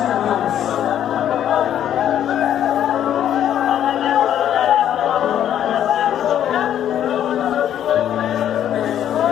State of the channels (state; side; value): quieter; right; 10.5 dB